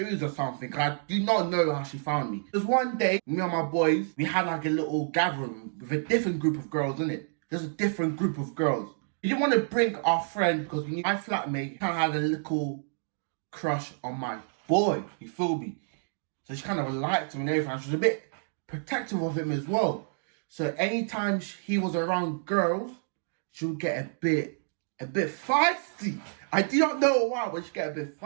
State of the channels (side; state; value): left; silent; digital silence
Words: or something. I do not know how she found me. Because one day, me and my boys, we had like a little gathering with a different group of girls, innit? There's a different group of girls. We didn't want to bring our friend because we knew my flatmate kind of had a little crush on my boy. You feel me? So she kind of liked him and everything. She was a bit protective of him as well. So anytime he was around girls, she would get a bit feisty. I do not know why, but she get a bit